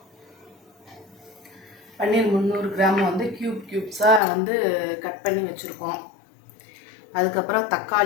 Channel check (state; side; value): drops out; right; at 4.2 s